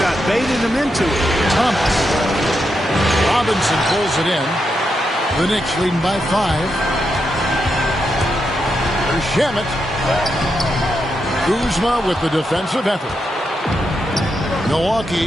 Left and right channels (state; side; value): normal; both; correlation 0.84